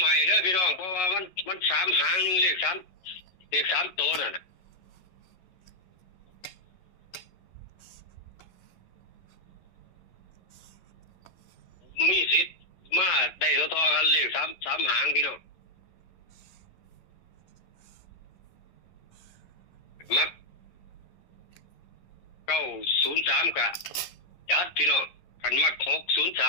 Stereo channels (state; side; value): late; right; 11 ms